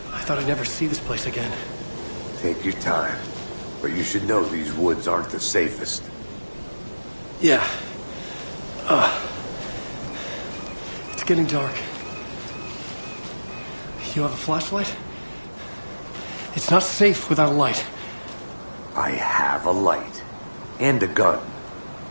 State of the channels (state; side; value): inverted; both; correlation -1.00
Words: I thought I'd never see this place again. Take your time. But you should know these woods aren't the safest. Yeah. It's getting dark. You have a flashlight? It's not safe without a light. I have a light. And a gun.